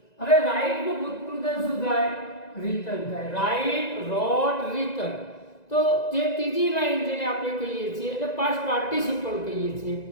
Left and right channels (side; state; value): right; late; 1.9 ms